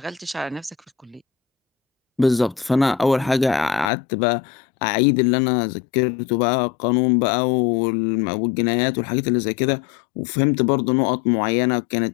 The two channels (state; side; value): drops out; right; at 3.9 s